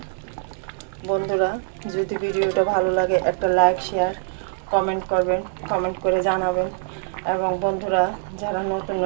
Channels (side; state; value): left; silent; digital silence